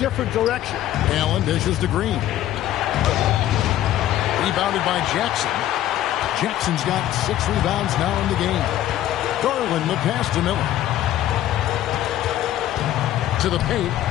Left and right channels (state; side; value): quieter; right; 12.9 dB